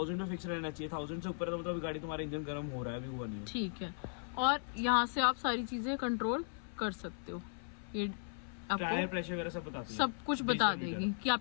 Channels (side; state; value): right; silent; 53 dB below the other